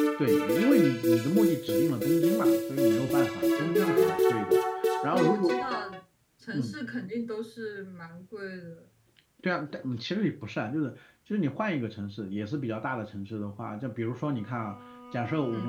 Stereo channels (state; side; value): identical; both; correlation 1.00